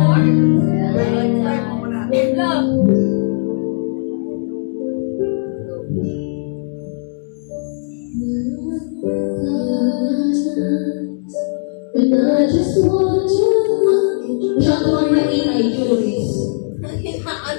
Try mo muna. Love. And I just want to siya ko ang naging ay Juris.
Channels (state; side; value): silent; right; 67 dB below the other